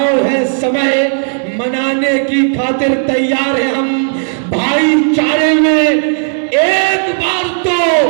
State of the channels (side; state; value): left; silent; digital silence